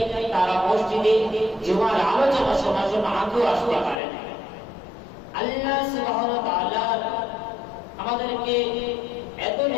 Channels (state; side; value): drops out; right; at 4.0 s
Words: তারা মসজিদে জুমার আলোচনা শোনার জন্য আগেও আসতে পারে না। আল্লাহ সুবহানাহু ওয়া তাআলা আমাদেরকে এত